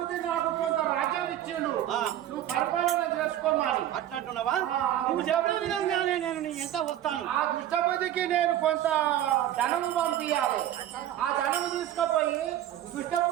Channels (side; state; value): left; quieter; 12.2 dB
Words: నాకు కొంత రాజ్యం ఇచ్చిండు. నువ్వు పరిపాలన చేసుకోమని. అట్లంటున్నావా? నువ్వు చెప్పిన విధంగానే నేను నీ ఎంత వస్తాను. ఆ దుష్టబుద్ధికి నేను కొంత ధనము పంపించాలి. ఆ ధనము తీసుకుపోయి